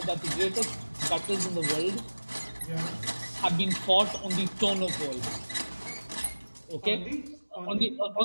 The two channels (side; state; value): both; inverted; correlation -1.00